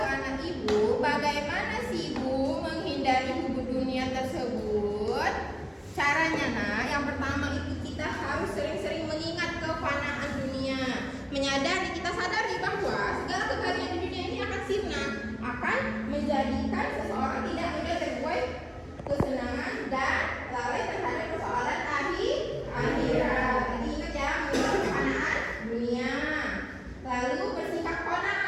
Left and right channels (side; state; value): both; identical; correlation 1.00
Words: anak ibu, bagaimana sih ibu menghindari hubub dunia tersebut? Caranya yang pertama itu kita harus sering-sering mengingat kefanaan dunia. Menyadari, kita sadari bahwa segala kekayaan di dunia ini akan sirna, akan menjadikan seseorang tidak mudah terbuai kesenangan dan lalai terhadap persoalan akhirat. Jadi ingat ya, mengingat kefanaan dunia. Lalu bersikap